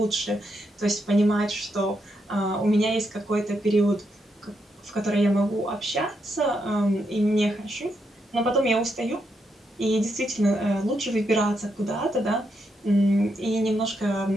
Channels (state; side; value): normal; both; correlation 0.81